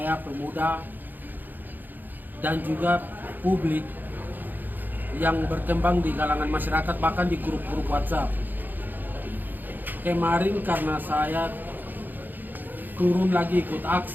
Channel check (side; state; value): left; late; 0.088 ms